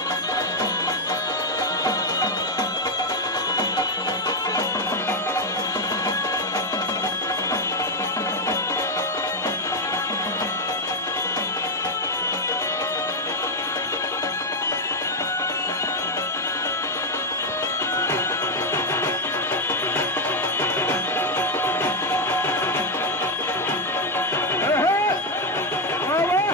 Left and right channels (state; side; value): normal; both; correlation 0.04